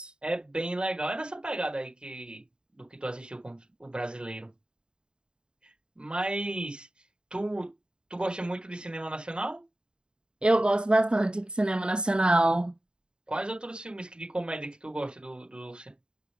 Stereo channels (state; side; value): late; left; 0.049 ms